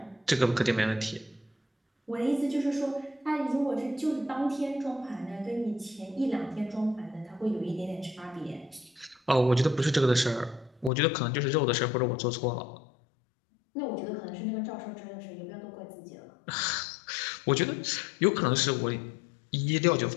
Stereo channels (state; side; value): drops out; right; at 10.9 s